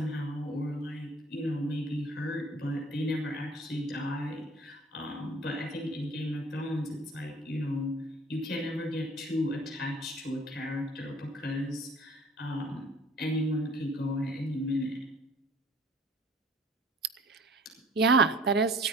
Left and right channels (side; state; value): both; normal; correlation 0.50